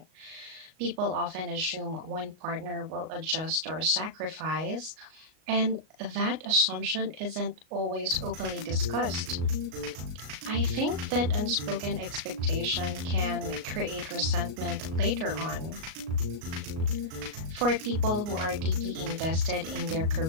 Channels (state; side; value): late; left; 38 ms